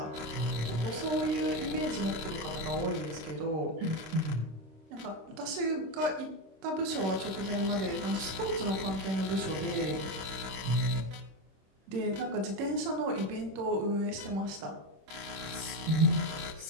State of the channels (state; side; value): late; left; 26 ms